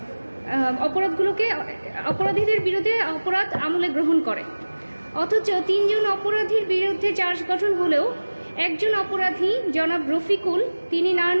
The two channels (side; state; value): both; inverted; correlation -1.00